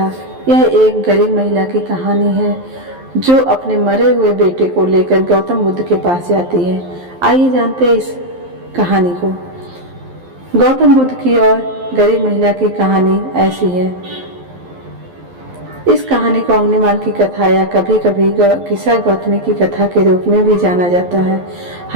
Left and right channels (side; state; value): left; late; 11 ms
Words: यह एक गरीब महिला की कहानी है जो अपने मरे हुए बेटे को लेकर गौतम बुद्ध के पास जाती है। आइए जानते हैं इस कहानी को। गौतम बुद्ध की और गरीब महिला की कहानी ऐसी है। इस कहानी को अग्निमाल की कथा या कभी कभी किसा गौतमी की कथा के रूप में भी जाना जाता है।